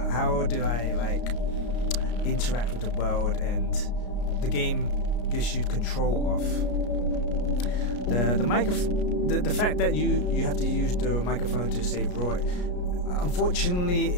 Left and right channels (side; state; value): right; late; 33 ms